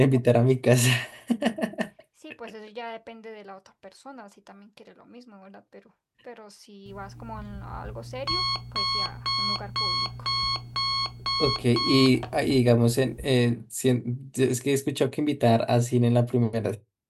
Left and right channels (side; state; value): both; identical; correlation 1.00